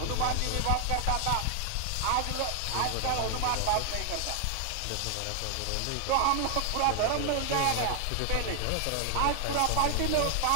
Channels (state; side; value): different; both; correlation 0.00